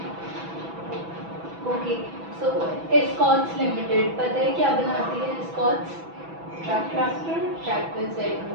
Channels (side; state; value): left; late; 6.0 ms